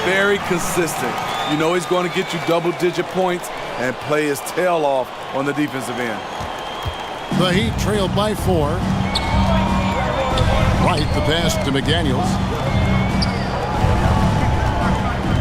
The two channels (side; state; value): both; identical; correlation 1.00